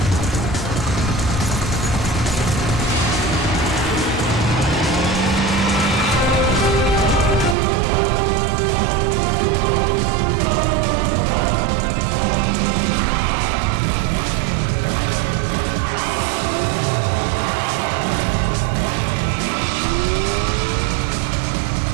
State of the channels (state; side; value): drops out; left; at 7.6 s